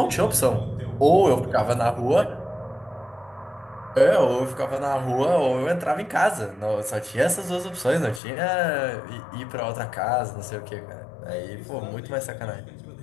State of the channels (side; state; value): right; drops out; at 8.2 s